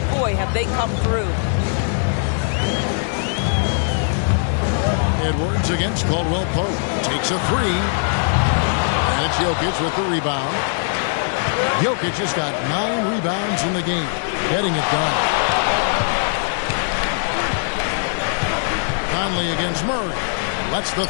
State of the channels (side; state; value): right; silent; digital silence